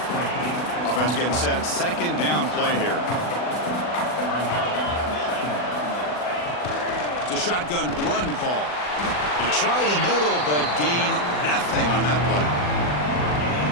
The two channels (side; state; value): right; late; 40 ms